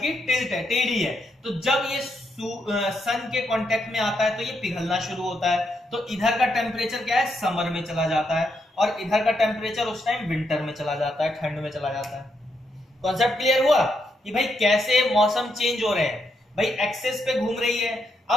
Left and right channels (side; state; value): both; normal; correlation 0.79